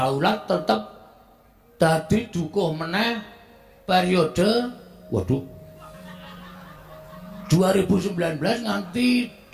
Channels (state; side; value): identical; both; correlation 1.00